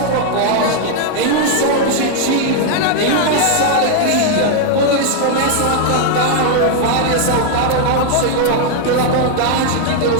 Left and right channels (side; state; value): both; different; correlation 0.00